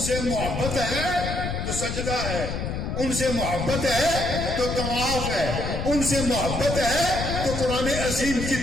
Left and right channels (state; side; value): noise; left; rumble, 4 dB below the sound